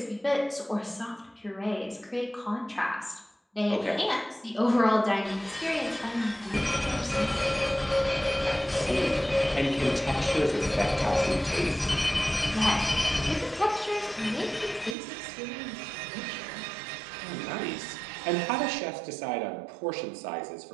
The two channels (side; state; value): left; drops out; at 15.0 s